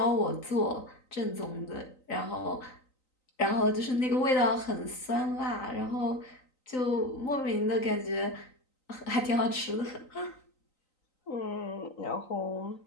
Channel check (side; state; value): right; late; 3.9 ms